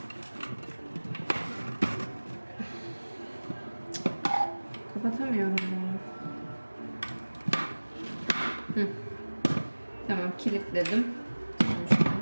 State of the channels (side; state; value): both; inverted; correlation -1.00